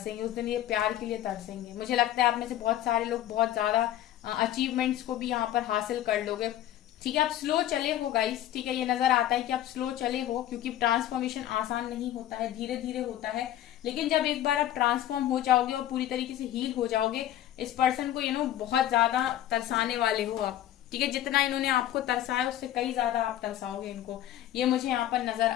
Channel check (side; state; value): right; quieter; 12.7 dB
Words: उस दिन ये प्यार के लिए तरसेंगे। मुझे लगता है आप में से बहुत सारे लोग बहुत ज्यादा अचीवमेंट्स को भी यहाँ पर हासिल कर लोगे, ठीक है। आप स्लो चले हो गाइस, ठीक है, ये नजर आता है कि आप स्लो चले हो, क्योंकि ट्रांसफॉर्मेशन आसान नहीं होता है, धीरे धीरे होता है। लेकिन जब एक बार आप ट्रांसफॉर्म हो जाओगे और पूरी तरीके से हील हो जाओगे, इस पर्सन को बहुत ज्यादा तरसाने वाले हो आप, ठीक है। जितना इन्होंने आपको तरसाया उससे कई ज्यादा आप तरसाओगे इनको, ये मुझे यहाँ पर नजर